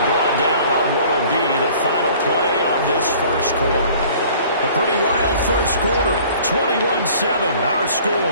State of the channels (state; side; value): inverted; both; correlation -0.51